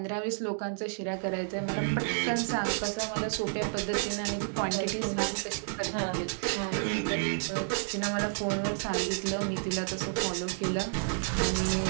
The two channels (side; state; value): left; silent; digital silence